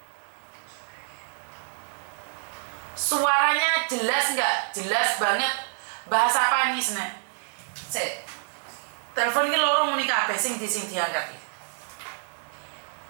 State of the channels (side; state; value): left; silent; digital silence